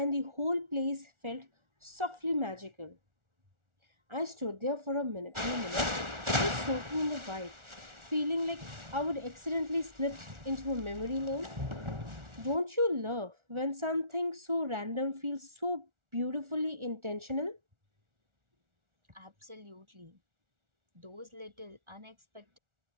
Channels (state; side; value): late; left; 1.4 ms